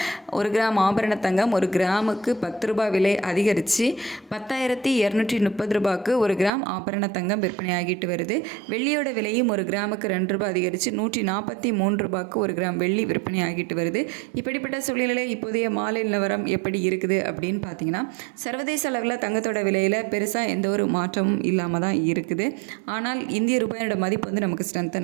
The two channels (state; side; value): drops out; left; at 6.5 s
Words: ஒரு கிராம் ஆபரண தங்கம் ஒரு கிராமுக்கு 10 ரூபாய் விலை அதிகரித்து 10,230 ரூபாய்க்கு ஒரு கிராம் ஆபரண தங்கம் விற்பனையாகிட்டு வருது. வெள்ளியோட விலையும் ஒரு கிராமுக்கு 2 ரூபாய் அதிகரித்து 143 ரூபாய்க்கு ஒரு கிராம் வெள்ளி விற்பனை ஆகிட்டு வருது. இப்படிப்பட்ட சூழ்நிலை இப்போதைய மாலை நிலவரம் எப்படி இருக்குது அப்படின்னு பார்த்தீங்கன்னா, சர்வதேச அளவில் தங்கத்தோட விலையில் பெருசாக எந்த ஒரு மாற்றமும் இல்லாமல் தான் இருக்குது. ஆனால் இந்திய ரூபாயோட மதிப்பு வந்து நமக்கு